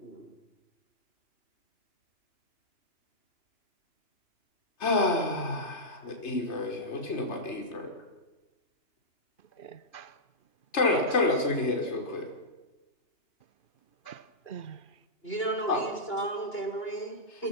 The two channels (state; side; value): late; right; 3.3 ms